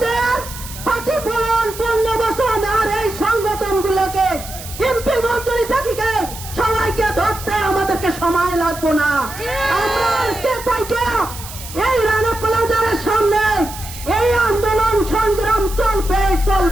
ক্ষতিপূরণ 15 বছর আর এই সংগঠনগুলোকে এমপি মন্ত্রী থাকিকে সবাইকে ধরতে আমাদেরকে সময় লাগবে না। আমরা আজকে থেকে এই রানা প্লাজার সামনে এই আন্দোলন সংগ্রাম চলবে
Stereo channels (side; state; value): right; noise; hiss, 13 dB below the sound